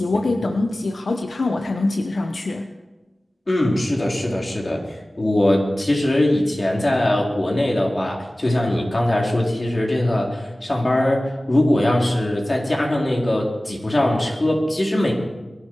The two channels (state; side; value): normal; both; correlation 0.97